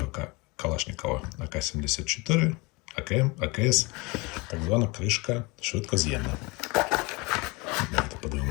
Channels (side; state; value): right; quieter; 26.0 dB